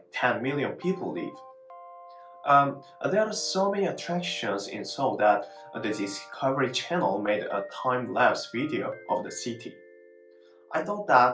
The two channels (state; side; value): identical; both; correlation 1.00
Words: 10 million people live. There are so many attractions in Seoul that the Discovery Channel made a time-lapse video of the city. I thought